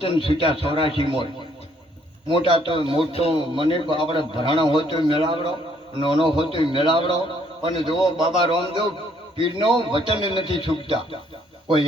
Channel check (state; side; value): normal; both; correlation 0.66